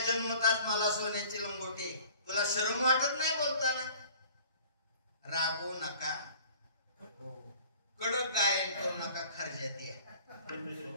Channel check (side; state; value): both; inverted; correlation -0.50